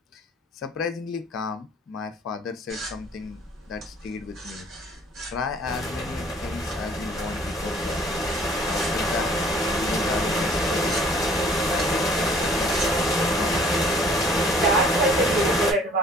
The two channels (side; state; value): both; normal; correlation 0.55